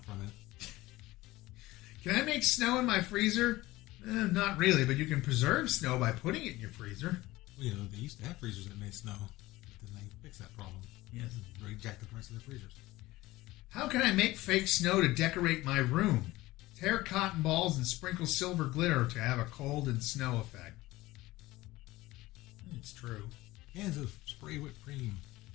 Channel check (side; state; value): right; quieter; 18.5 dB